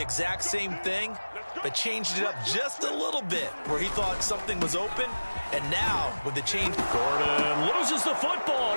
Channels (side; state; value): both; inverted; correlation -1.00